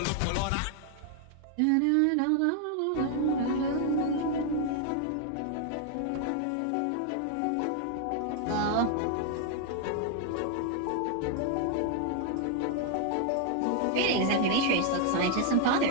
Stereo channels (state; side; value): different; both; correlation 0.00